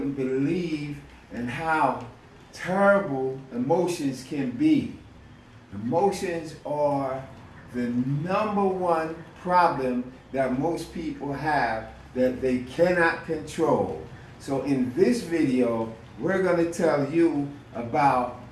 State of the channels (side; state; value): both; identical; correlation 1.00